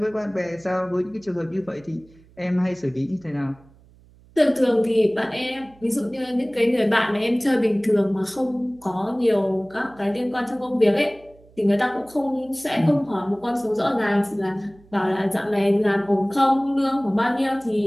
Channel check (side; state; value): right; noise; hum, 27 dB below the sound